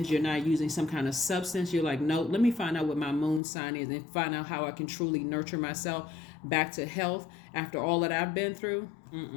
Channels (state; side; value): drops out; right; at 3.4 s